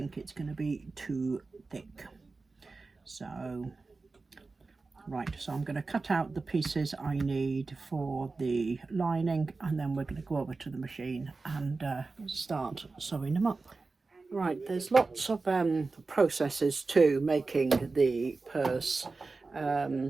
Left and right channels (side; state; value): left; quieter; 3.9 dB